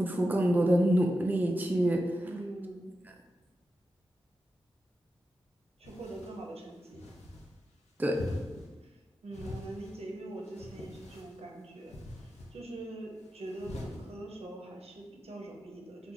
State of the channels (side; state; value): both; normal; correlation 0.90